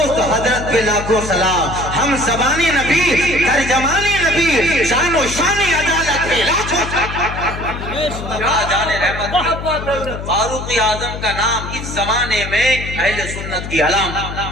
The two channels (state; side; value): noise; left; hum, 8 dB below the sound